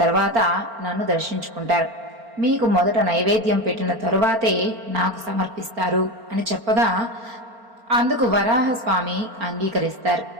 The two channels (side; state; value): left; late; 4.4 ms